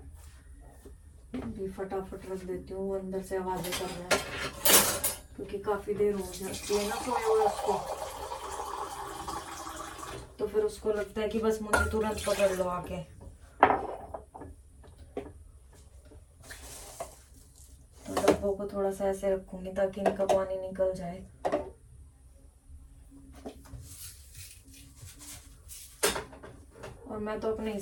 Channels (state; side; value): identical; both; correlation 1.00